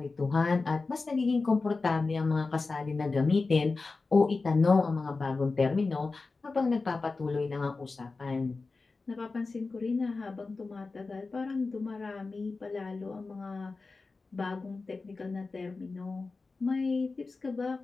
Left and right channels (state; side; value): quieter; right; 3.9 dB